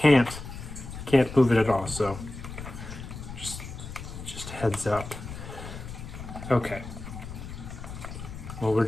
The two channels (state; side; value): noise; left; rumble, 10 dB below the sound